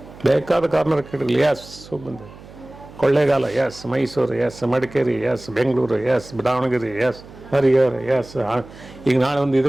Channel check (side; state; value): right; noise; hum, 19 dB below the sound